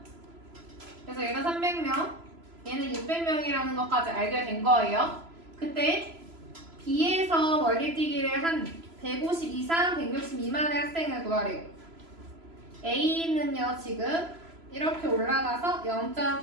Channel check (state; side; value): late; left; 3.0 ms